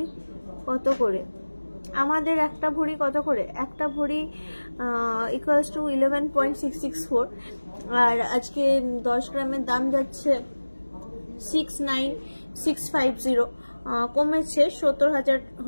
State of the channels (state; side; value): inverted; both; correlation -1.00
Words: কত করে? আমাদের একটা ভরি কত করে? একটা ভরি ইকুয়ালস টু 11.664, আর আজকে 10 গ্রামের দাম যাচ্ছে 69650। কমেছে, 70,000